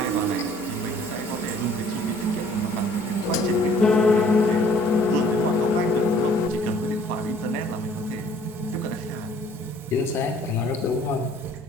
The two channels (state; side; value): normal; both; correlation 0.57